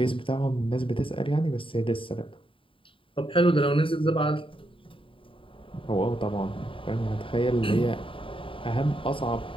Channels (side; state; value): right; late; 0.25 ms